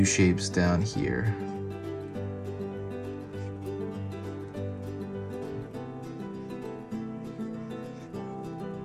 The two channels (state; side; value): identical; both; correlation 1.00